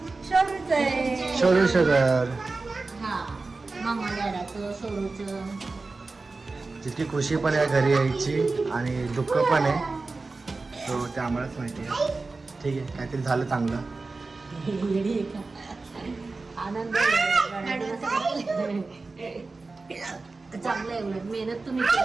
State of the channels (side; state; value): left; quieter; 3.7 dB